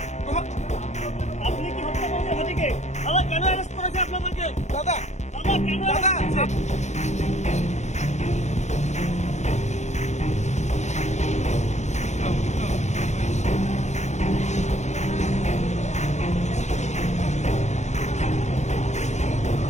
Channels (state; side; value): late; right; 0.33 ms